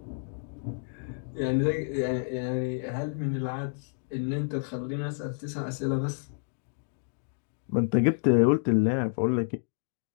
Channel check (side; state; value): right; silent; digital silence